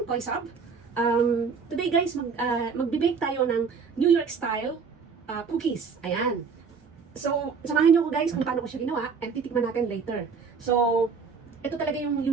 Koy Sab. Today guys, magbe-bake tayo ng New York style cookies. Ayan. So, samahan niyo ko guys kung paano ko siya ginawa and titikman natin later. So, ito talaga yung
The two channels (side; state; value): left; quieter; 5.5 dB